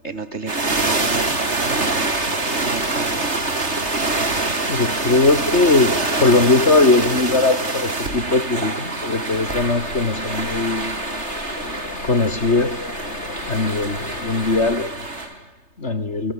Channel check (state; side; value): late; right; 3.3 ms